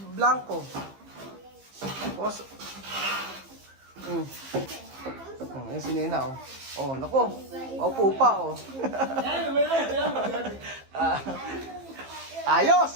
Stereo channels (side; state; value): left; late; 15 ms